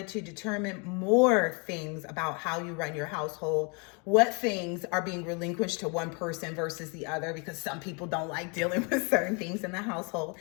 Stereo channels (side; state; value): right; quieter; 33.2 dB